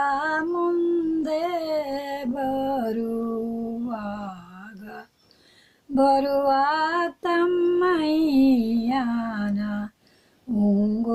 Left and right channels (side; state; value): both; identical; correlation 1.00